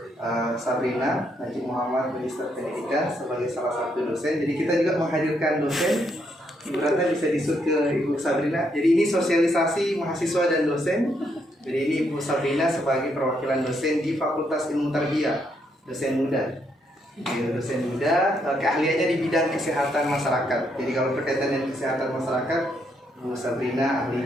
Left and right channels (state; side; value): normal; both; correlation 0.75